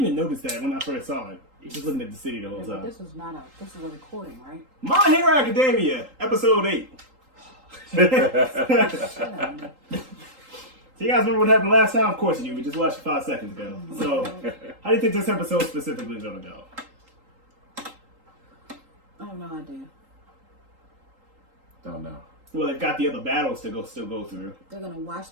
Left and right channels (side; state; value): left; late; 3.8 ms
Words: even notice that when I first saw it. Just looking at the city the whole time. This is a recording, right? My Hero Academia, episode 8. So you guys remember what happened last time? Of course you do. We just watched it 5 seconds ago. So, how do you think this episode specifically is going to go? I have no idea. Don't know. Well, they've got the other battles to still go through. They're going to watch